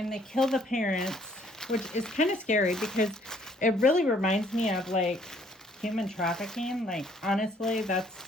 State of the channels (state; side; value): normal; both; correlation 0.63